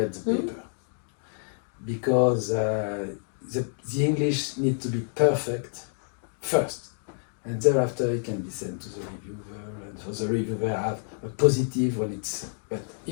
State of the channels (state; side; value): silent; right; 59 dB below the other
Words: the paper, because the English need to be perfect first, and thereafter it can be sent to the reviewer, and for the reviewer have a positive when it's. But